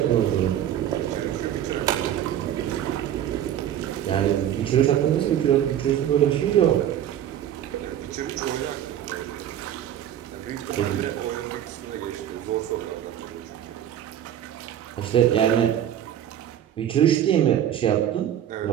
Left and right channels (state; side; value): quieter; left; 10.8 dB